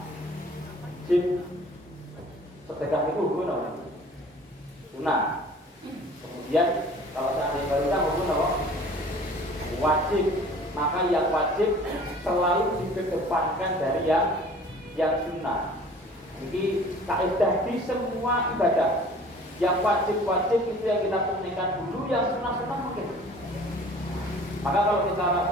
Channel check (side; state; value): both; normal; correlation 0.48